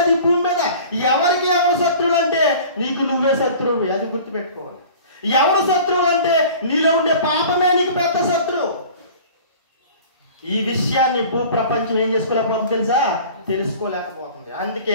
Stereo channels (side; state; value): both; inverted; correlation -0.43